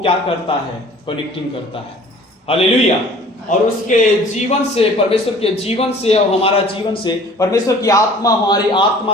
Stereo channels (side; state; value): both; normal; correlation 0.49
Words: करता है? कनेक्टिंग करता है। हालेलुया। और उसके जीवन से, परमेश्वर के जीवन से और हमारा जीवन से, परमेश्वर की आत्मा हमारी